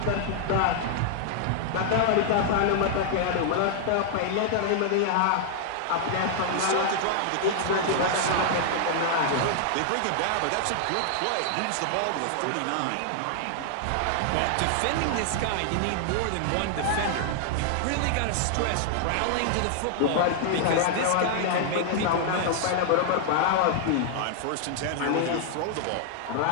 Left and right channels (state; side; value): different; both; correlation -0.01